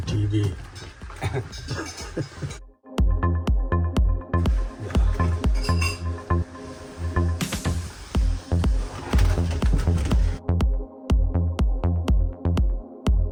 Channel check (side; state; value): both; identical; correlation 1.00